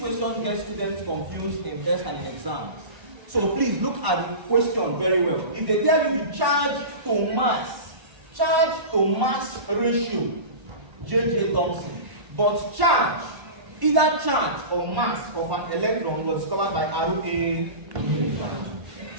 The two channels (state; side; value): late; left; 1.1 ms